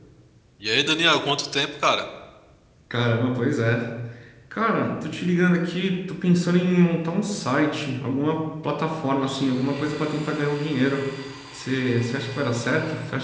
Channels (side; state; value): both; identical; correlation 1.00